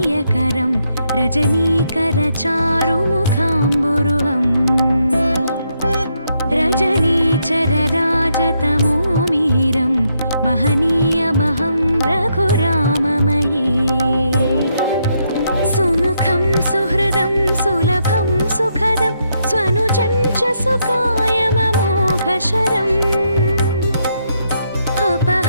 रजनीकरचारुमुखाम्बुरुहम् रजनीचरराजतमो मिहिरं महनीयमहं रघुराममये सुमुखं सुहृदं सुलभं सुखदं स्वनुजं च सुकायममोघशरम्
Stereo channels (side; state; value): both; inverted; correlation -0.77